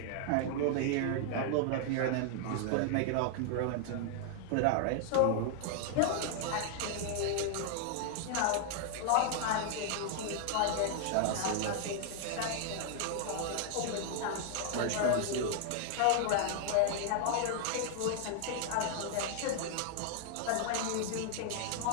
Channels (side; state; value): both; different; correlation 0.00